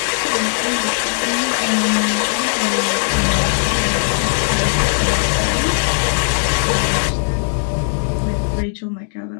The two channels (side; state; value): right; silent; digital silence